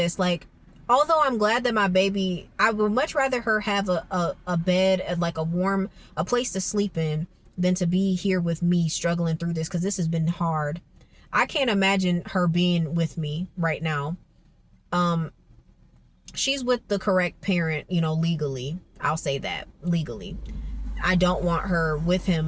like, although I'm glad that my baby, I would much rather her have a bed, like a place to sleep in, than to be here with me struggling through this, because this has been hard. I can't imagine her being with me right now. She's with the correct parent, legally. I'll say that, legally. I don't want her with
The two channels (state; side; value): identical; both; correlation 1.00